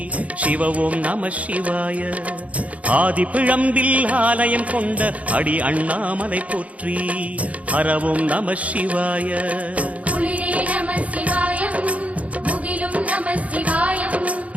சிவ ஓம் நம சிவாய ஆதி பிழம்பில் ஆலயம் கொண்ட அடி அண்ணாமலை போற்றி ஹரவோம் நம சிவாய குளிரே நம சிவாயம் முகிலும் நம சிவாயம்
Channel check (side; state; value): left; late; 0.067 ms